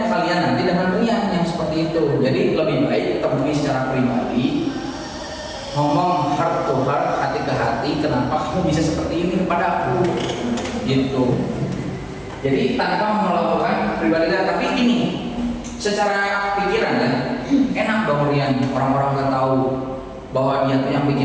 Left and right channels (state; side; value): identical; both; correlation 1.00